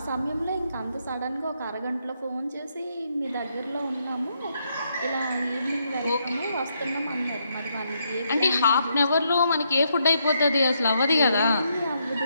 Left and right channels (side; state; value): both; inverted; correlation -0.77